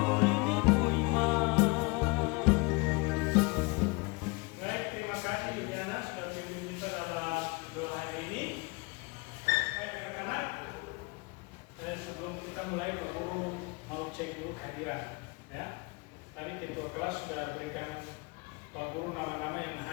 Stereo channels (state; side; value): quieter; right; 28.3 dB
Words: Mulai Pak Guru mau cek dulu kehadiran, ya. Tadi ketua kelas sudah berikan Pak Guru nama-nama yang